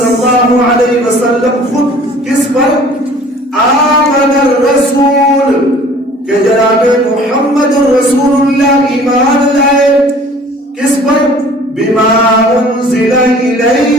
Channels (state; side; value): normal; both; correlation 0.50